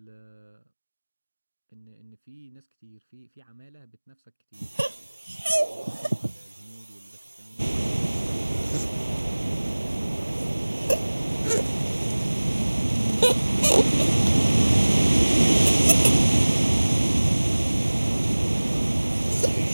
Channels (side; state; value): both; inverted; correlation -1.00